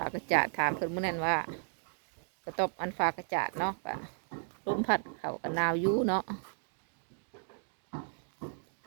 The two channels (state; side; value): silent; left; digital silence